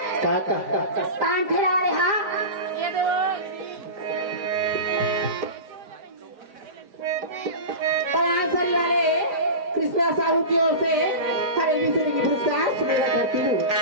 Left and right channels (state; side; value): late; left; 5.0 ms